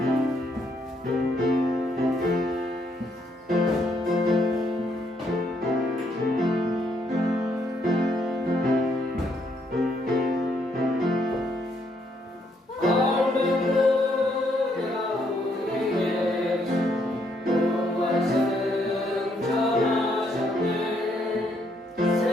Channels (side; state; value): both; normal; correlation 0.73